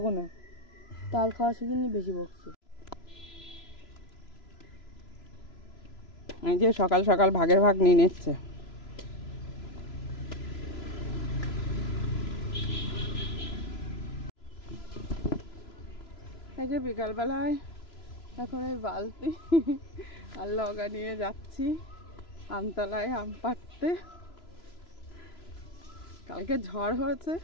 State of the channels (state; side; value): late; right; 3.0 ms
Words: না, তাল খাওয়া শিখিনি, বেশি বকছে। এই যে সকাল সকাল ভাগের ভাগ নিয়ে নিচ্ছে। এই যে বিকালবেলায় এখন এই বালতি আর লগা নিয়ে যাচ্ছি আমতলায় আম পাড়তে। কালকে ঝড় হয়েছে,